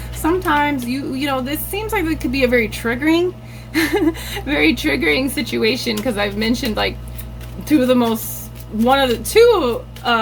sometimes you know, this seems like it could be a very triggering very triggering situation, because I've mentioned like two of the most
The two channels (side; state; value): both; identical; correlation 1.00